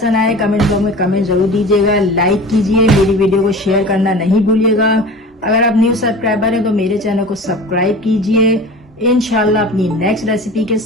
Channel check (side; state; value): both; normal; correlation 0.37